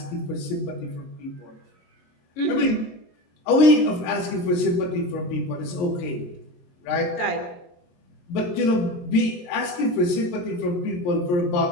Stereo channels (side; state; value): right; late; 22 ms